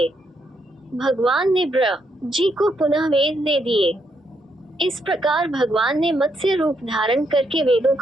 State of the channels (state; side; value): normal; both; correlation 0.77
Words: भगवान ने ब्रह्मा जी को पुनः वेद दे दिए। इस प्रकार भगवान ने मत्स्य रूप धारण करके वेदों